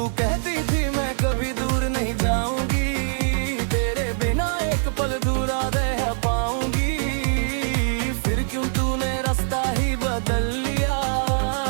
कहती थी मैं कभी दूर नहीं जाऊंगी, तेरे बिना एक पल दूरा रह पाऊंगी। फिर क्यों तूने रास्ता ही बदल लिया,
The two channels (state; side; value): silent; left; 62 dB below the other